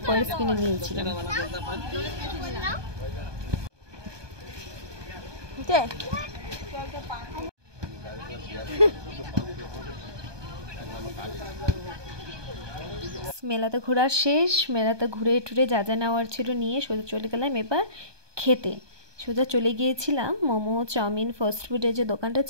পার্স কিনে নিয়েছিলাম। মেলাতে ঘোরা শেষ। মেলাতে ঘুরে টুরে যা যা নেওয়ার ছিল নিয়ে সোজা চলে গেলাম এবার খেতে। সোজা চলে গিয়েছিলাম মোমো, চাউমিন, ফাস্ট ফুডের যে দোকানটা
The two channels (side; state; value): left; late; 1.2 ms